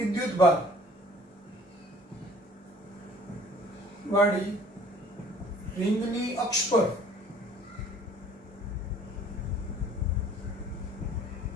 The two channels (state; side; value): normal; both; correlation 0.53